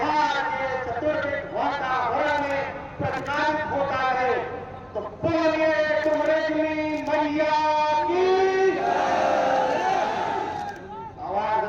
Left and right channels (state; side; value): identical; both; correlation 1.00